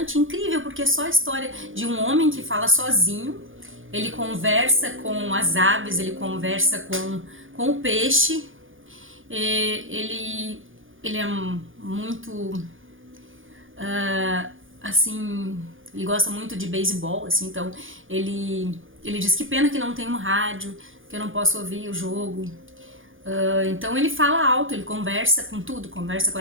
incrível, porque é só a história de um homem que fala sozinho, ele conversa com as aves, ele conversa com o peixe, ele é muito assim, ele gosta muito de beisebol, assim, então ele diz que pena que não tem um rádio, que eu não posso ouvir o jogo. Então ele fala alto, ele conversa com tudo, conversa com a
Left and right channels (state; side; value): late; left; 0.58 ms